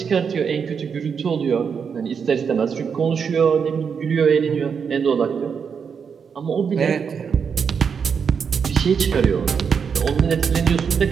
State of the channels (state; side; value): quieter; left; 6.5 dB